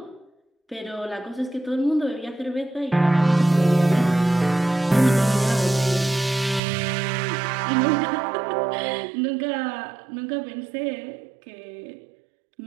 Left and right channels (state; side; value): drops out; left; at 6.6 s